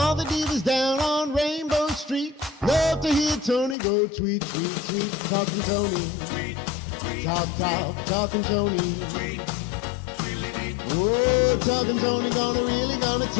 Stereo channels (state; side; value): drops out; right; at 3.8 s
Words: the divas down on Rainbow Street love to hear Toni go tweet, tweet, tweet. Talking Toni. Tweet, tweet, Talk, talking Toni. tweet, tweet, Oh, talking Toni really gonna